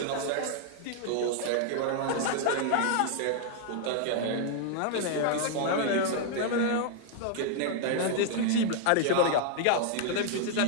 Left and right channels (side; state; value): both; different; correlation 0.00